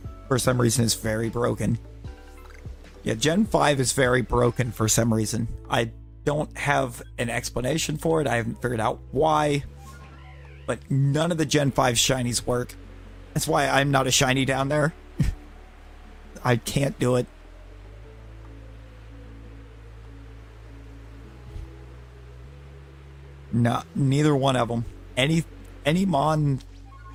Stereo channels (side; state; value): both; identical; correlation 1.00